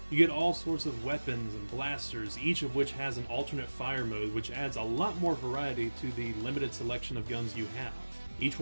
You get all sorts of weapons and blasters, each of which has an alternate fire mode, which adds a lot more variety to the limited selection of guns you have. Each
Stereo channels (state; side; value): inverted; both; correlation -1.00